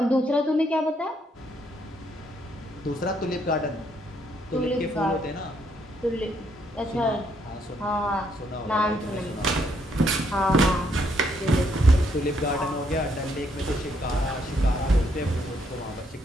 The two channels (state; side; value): normal; both; correlation 0.72